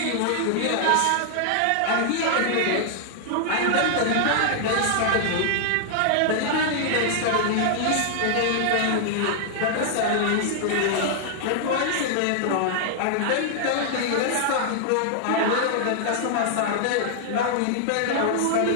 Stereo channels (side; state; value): both; different; correlation -0.01